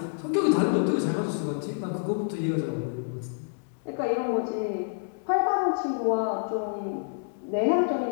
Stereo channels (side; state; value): right; silent; digital silence